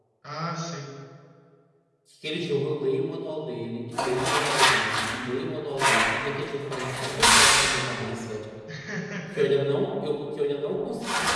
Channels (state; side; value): identical; both; correlation 1.00